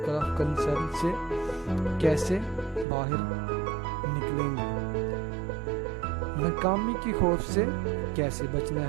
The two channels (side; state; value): left; drops out; at 2.9 s